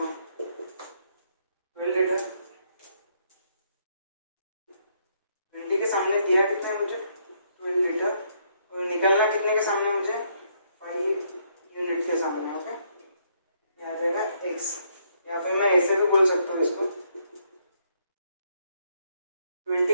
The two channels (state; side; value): inverted; both; correlation -0.72